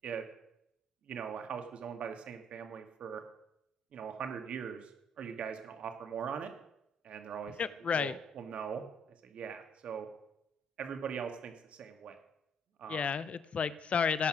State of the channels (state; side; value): normal; both; correlation 0.65